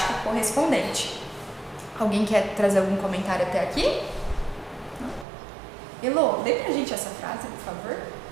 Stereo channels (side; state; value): left; drops out; at 5.2 s